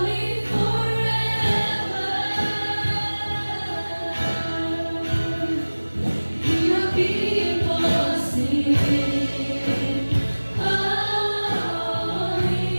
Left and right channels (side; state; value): both; inverted; correlation -1.00